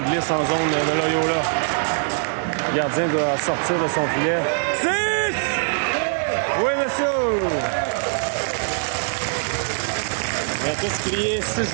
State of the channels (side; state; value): left; silent; 64 dB below the other